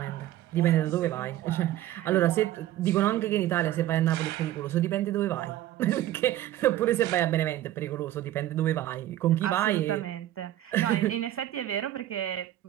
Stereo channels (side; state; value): left; quieter; 13.6 dB